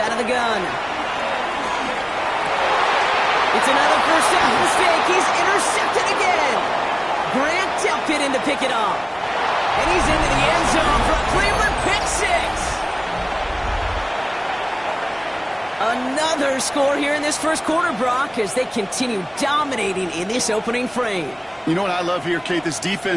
of the gun. It's another first down mistake. He's intercepted again. Grant Delpit in to pick it off. And he's into the end zone for a Cleveland pick 6. Another score here in this 1st quarter, Brock, as they continue dominating in this opening frame. You know what I love here, Kate? This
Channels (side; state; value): both; identical; correlation 1.00